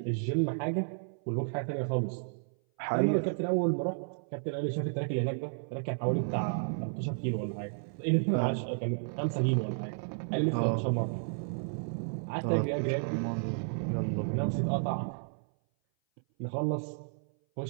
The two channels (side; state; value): left; silent; 56 dB below the other